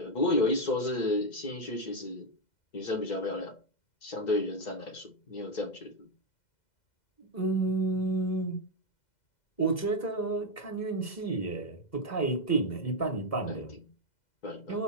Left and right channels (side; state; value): right; late; 2.0 ms